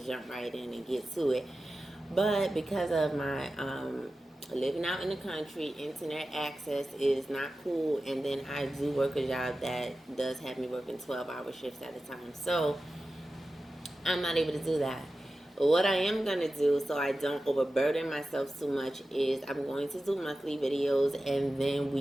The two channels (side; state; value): both; normal; correlation 0.94